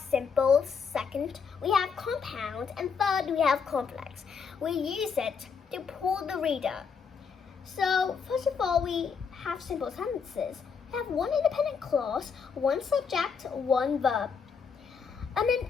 Second, we have compound. And third, we have complex. We use it to pull the reader. So, first of all, we have simple sentences. We have one independent clause, one subject, one verb. And then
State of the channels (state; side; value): quieter; right; 6.0 dB